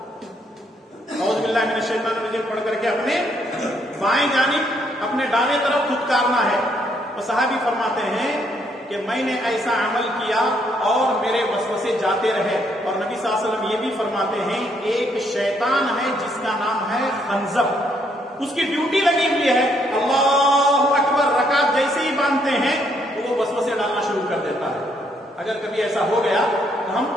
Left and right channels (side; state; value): both; normal; correlation 0.71